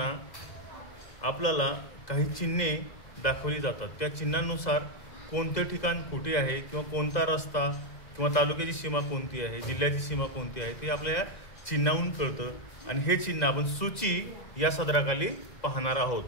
आपल्याला काही चिन्हे दाखवली जातात। त्या चिन्हांनुसार कोणते ठिकाण कुठे आहे किंवा कोणता रस्ता किंवा तालुक्याची सीमा कोणती आहे, जिल्ह्याची सीमा कोणती आहे ते आपल्या चिन्हावरून कळतं। आणि हे चिन्ह आपण सूची या सदराखाली पाहणार आहोत।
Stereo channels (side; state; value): right; late; 2.1 ms